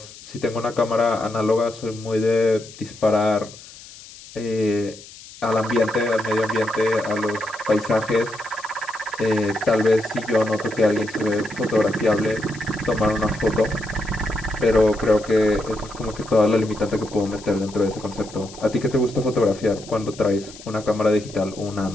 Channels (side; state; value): left; noise; hiss, 18 dB below the sound